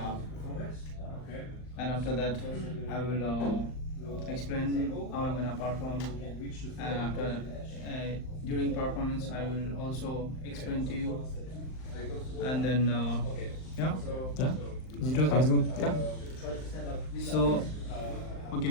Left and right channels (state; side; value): late; right; 39 ms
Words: and after that, I will explain how I'm gonna perform, and after during performance, I will also explain to you, and then yeah. Yeah. Is it okay? Sounds good. Yeah. So, okay,